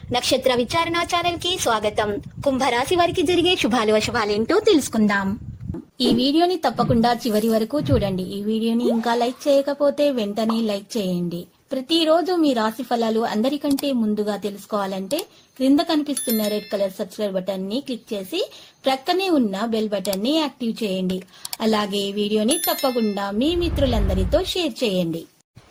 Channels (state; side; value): identical; both; correlation 1.00